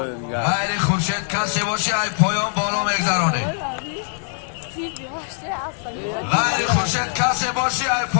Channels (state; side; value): silent; right; 64 dB below the other